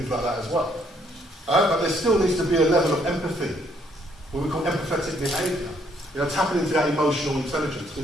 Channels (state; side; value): normal; both; correlation 0.68